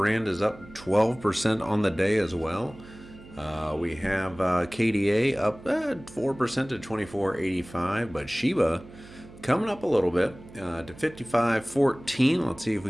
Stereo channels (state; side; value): noise; right; hum, 19 dB below the sound